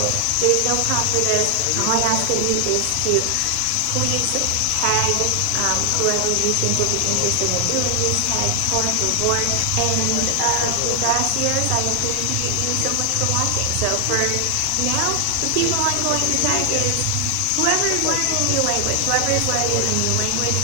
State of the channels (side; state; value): both; different; correlation 0.00